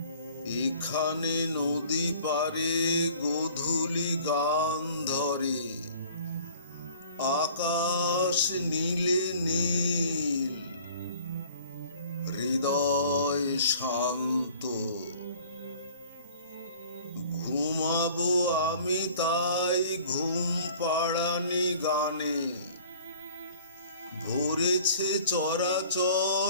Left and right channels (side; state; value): both; inverted; correlation -0.50